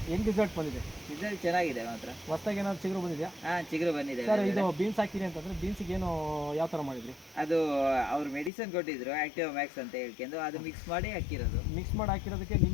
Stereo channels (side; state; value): right; drops out; at 8.5 s